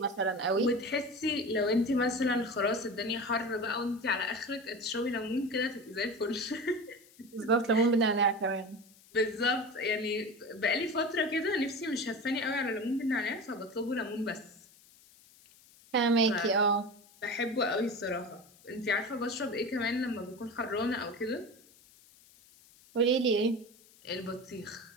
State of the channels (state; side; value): noise; left; hiss, 26 dB below the sound